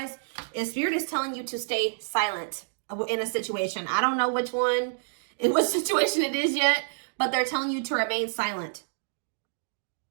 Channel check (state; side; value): silent; left; digital silence